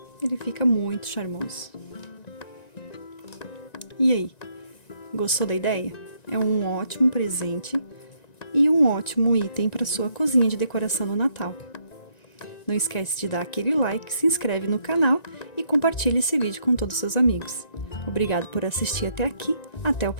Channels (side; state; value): right; late; 1.9 ms